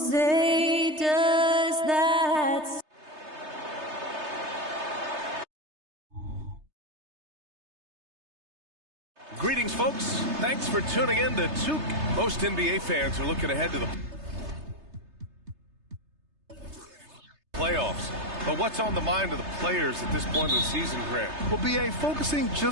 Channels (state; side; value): late; left; 3.3 ms